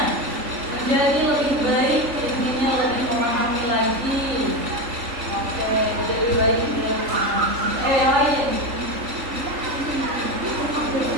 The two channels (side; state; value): left; late; 3.6 ms